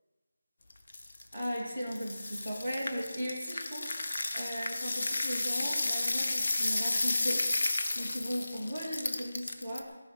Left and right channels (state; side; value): inverted; both; correlation -0.95